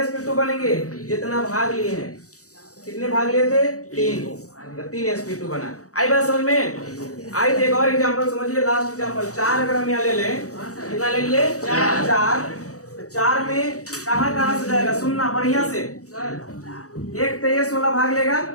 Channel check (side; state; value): right; late; 0.66 ms